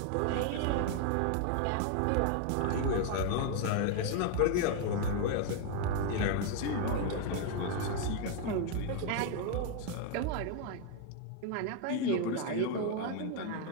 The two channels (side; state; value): both; different; correlation 0.01